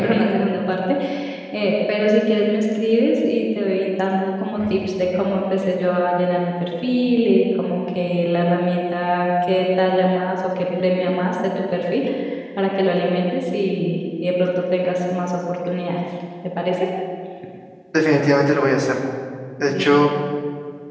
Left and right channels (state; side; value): identical; both; correlation 1.00